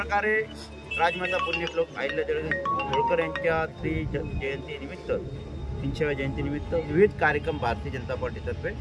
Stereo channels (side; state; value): both; identical; correlation 1.00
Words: राजमाता पुण्यश्लोक अहिल्यादेवी होळकर यांच्या जयंतीनिमित्त 300व्या जयंतीनिमित्त विविध कार्यक्रम भारतीय जनता पार्टीतर्फे